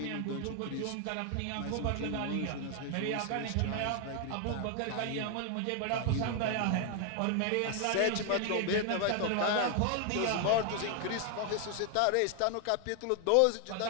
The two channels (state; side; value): different; both; correlation 0.00